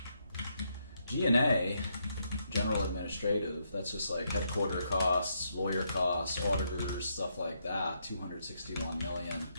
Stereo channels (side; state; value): both; inverted; correlation -0.77